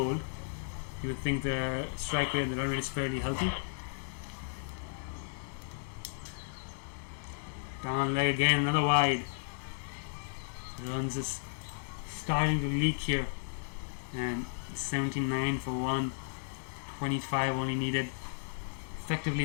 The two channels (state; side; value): silent; right; digital silence